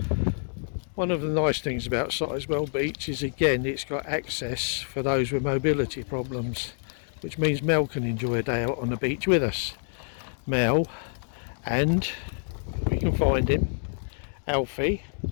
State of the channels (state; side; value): silent; right; 60 dB below the other